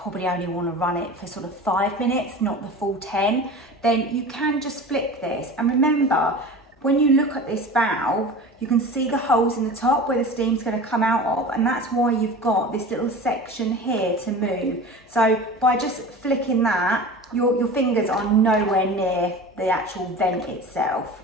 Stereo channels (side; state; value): both; normal; correlation 0.35